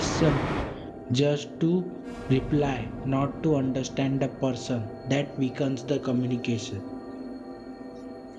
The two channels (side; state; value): both; identical; correlation 1.00